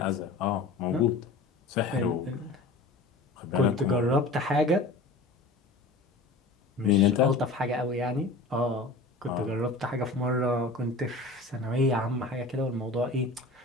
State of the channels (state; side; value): quieter; right; 3.2 dB